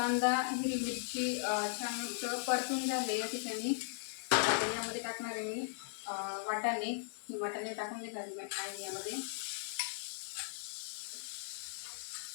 हिरवी मिरची छान परतून झाले या ठिकाणी. यामध्ये टाकणार आहे मी वाटाणे टाकून घेणार आहे यामध्ये.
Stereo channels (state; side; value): silent; right; digital silence